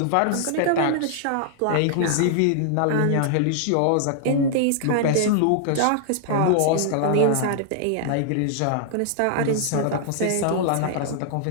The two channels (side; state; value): both; different; correlation 0.00